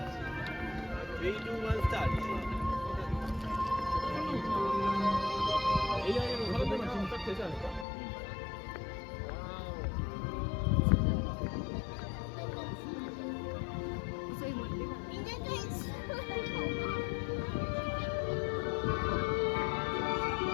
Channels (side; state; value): right; drops out; at 7.9 s